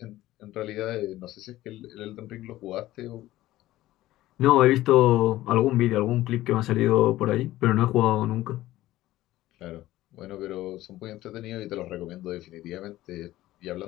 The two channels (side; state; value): right; quieter; 15.7 dB